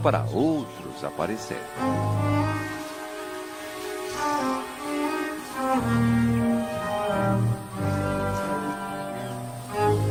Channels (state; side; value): identical; both; correlation 1.00